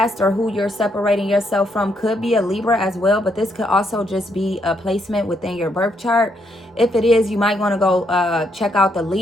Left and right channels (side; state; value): both; normal; correlation 0.75